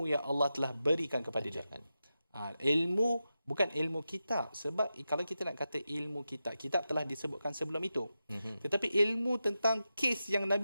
yang Allah telah berikan kepada dia. Ilmu bukan ilmu kitab, sebab kalau kita nak kata ilmu kitab telah disebutkan sebelum itu. Tetapi ilmu tentang kes yang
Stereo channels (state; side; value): inverted; both; correlation -0.91